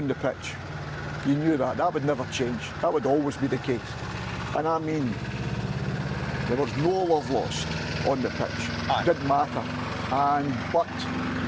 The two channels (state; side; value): identical; both; correlation 1.00